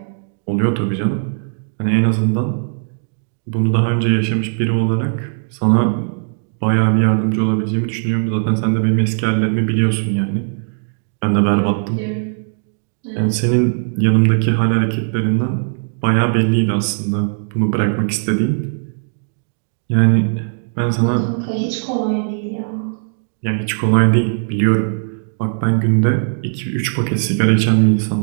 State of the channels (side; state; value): left; silent; digital silence